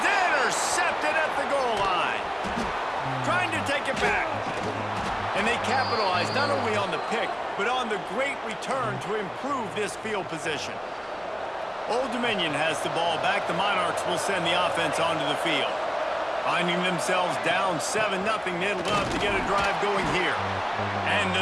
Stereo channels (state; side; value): identical; both; correlation 1.00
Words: intercepted at the goal line. Trying to take it back. And they capitalize not only on the pick, but on the great return to improve this field position. Old Dominion has the ball back. The Monarchs will send the offense onto the field. Finding themselves down 7-0, they'd love to get a drive going here. And